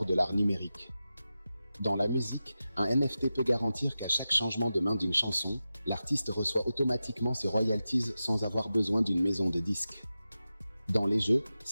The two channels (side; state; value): both; inverted; correlation -0.93